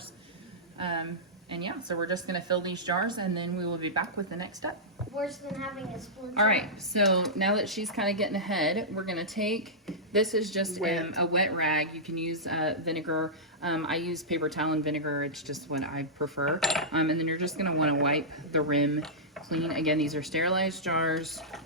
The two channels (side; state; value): both; normal; correlation -0.13